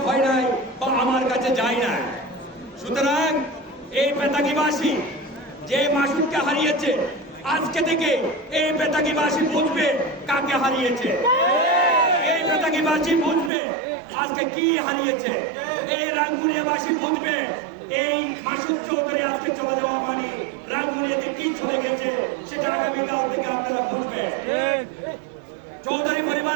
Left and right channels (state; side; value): drops out; left; at 13.5 s